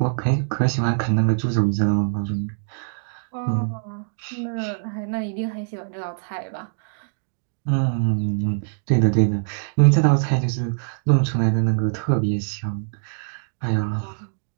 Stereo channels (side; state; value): left; silent; digital silence